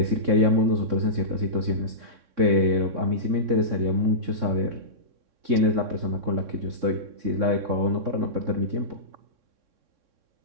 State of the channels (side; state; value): left; late; 3.6 ms